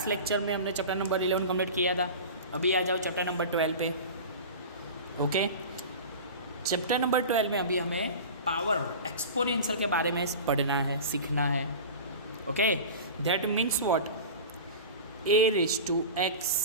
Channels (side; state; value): both; inverted; correlation -0.33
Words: lecture में हमने chapter number 11 complete किया था। अभी आ जाओ चैप्टर नंबर 12 पे। ओके, चैप्टर नंबर 12 में अभी हमें पावर एक्सपोनेंशियल के बारे में पढ़ना है, सीखना है। Okay, that means what, a raise to